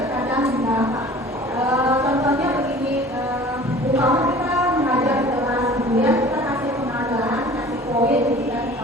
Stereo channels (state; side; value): normal; both; correlation 0.45